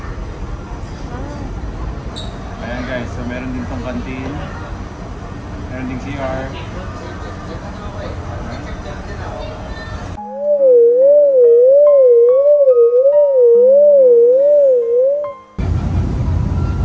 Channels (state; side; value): identical; both; correlation 1.00